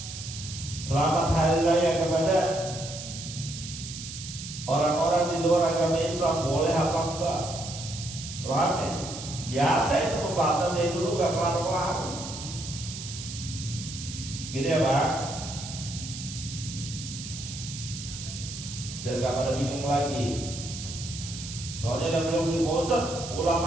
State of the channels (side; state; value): right; noise; hiss, 9 dB below the sound